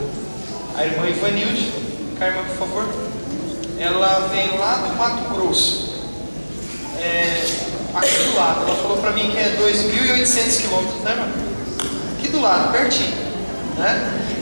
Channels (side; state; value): both; inverted; correlation -1.00